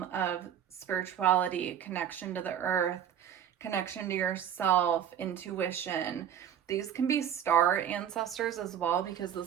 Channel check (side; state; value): left; quieter; 9.6 dB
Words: of spirituality, connection to the earth, connection to yourself, intuition. These can be star ancestors as well, because